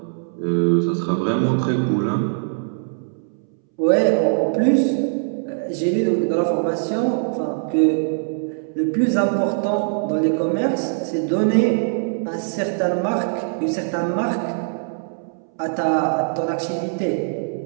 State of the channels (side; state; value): left; silent; 64 dB below the other